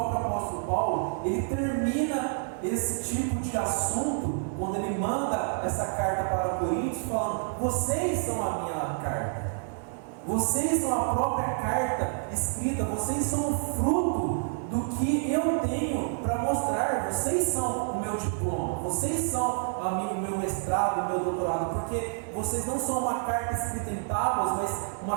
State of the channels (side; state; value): left; silent; 59 dB below the other